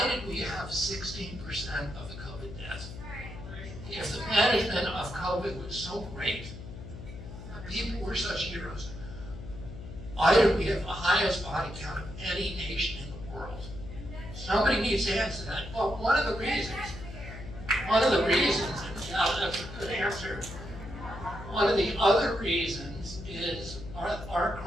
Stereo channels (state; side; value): noise; left; hum, 12 dB below the sound